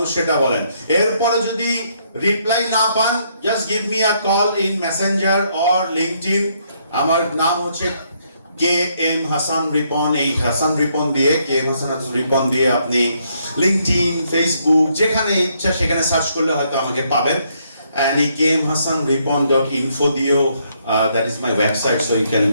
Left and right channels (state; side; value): inverted; both; correlation -0.72